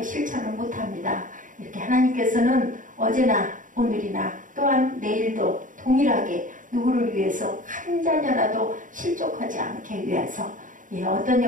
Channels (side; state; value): left; late; 0.38 ms